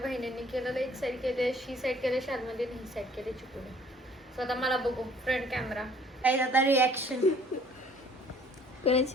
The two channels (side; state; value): both; normal; correlation 0.57